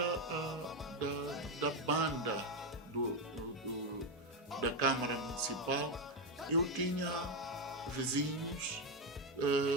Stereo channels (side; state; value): both; normal; correlation 0.07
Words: da banda da Câmara Municipal, eu tinha vizinhos